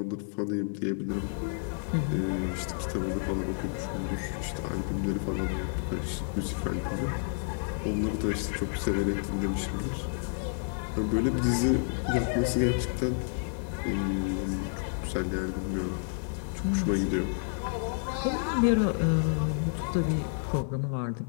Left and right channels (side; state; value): right; silent; digital silence